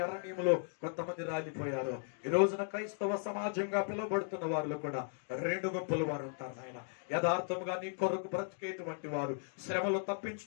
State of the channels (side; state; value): right; silent; 53 dB below the other